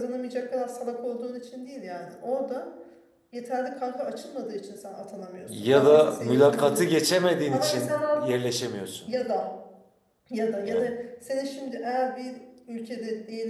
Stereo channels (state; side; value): identical; both; correlation 1.00